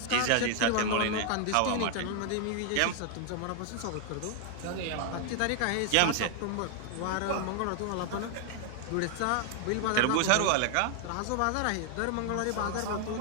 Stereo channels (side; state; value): both; different; correlation 0.00